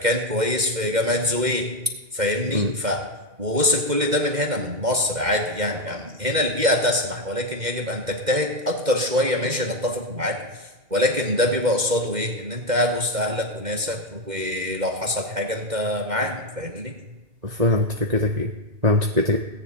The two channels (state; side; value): late; left; 2.1 ms